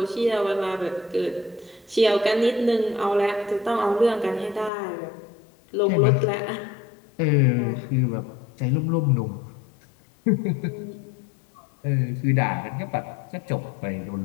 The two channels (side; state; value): right; drops out; at 4.7 s